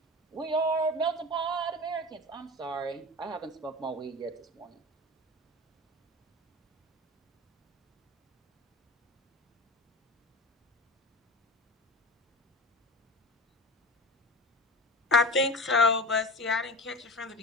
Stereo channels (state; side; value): normal; both; correlation 0.31